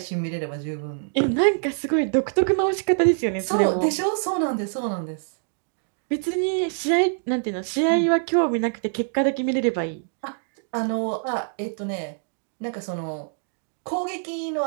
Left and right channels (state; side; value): silent; left; digital silence